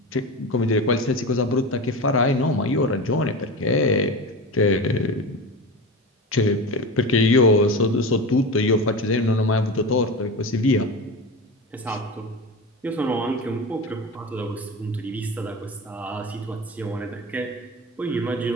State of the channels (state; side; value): normal; both; correlation 0.26